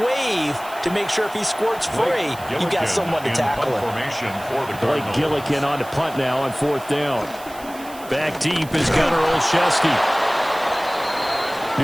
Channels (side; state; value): right; noise; hiss, 19 dB below the sound